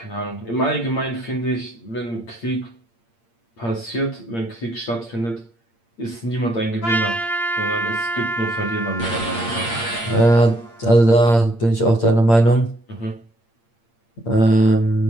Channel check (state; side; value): late; right; 8.7 ms